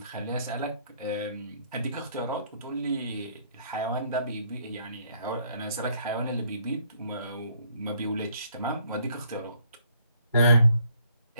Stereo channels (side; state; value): both; inverted; correlation -0.66